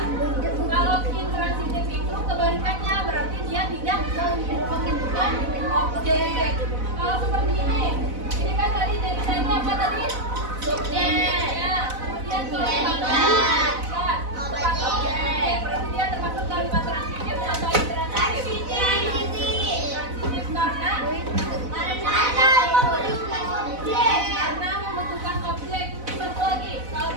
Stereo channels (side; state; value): left; late; 4.0 ms